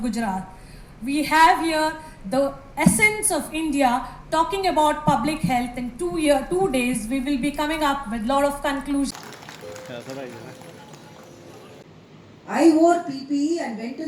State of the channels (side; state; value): both; identical; correlation 1.00